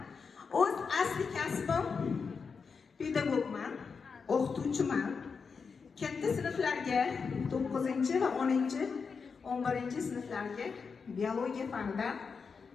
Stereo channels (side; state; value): right; quieter; 5.4 dB